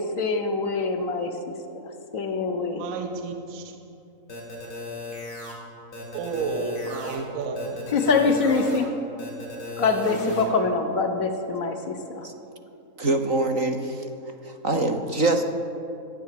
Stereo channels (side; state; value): left; late; 3.9 ms